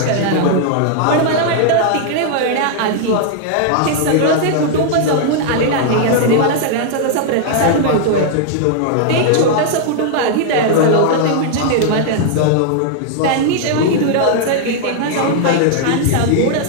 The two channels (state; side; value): different; both; correlation -0.01